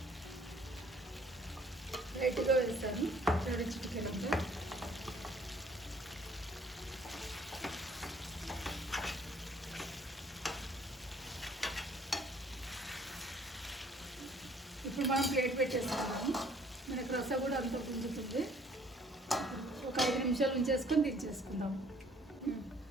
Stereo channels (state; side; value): normal; both; correlation 0.59